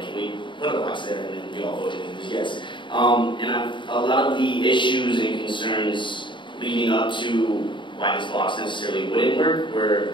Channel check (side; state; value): right; late; 0.23 ms